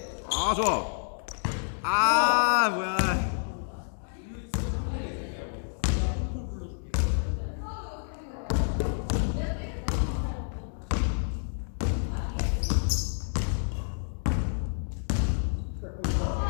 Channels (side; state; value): right; silent; digital silence